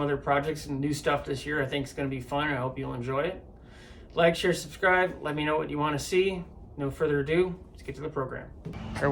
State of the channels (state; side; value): identical; both; correlation 1.00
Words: projects and new stuff this year. I think it's going to be fun. I hope you'll enjoy it. Like, share, subscribe. Let me know what you want to see. No further ado, let's get to the program. Our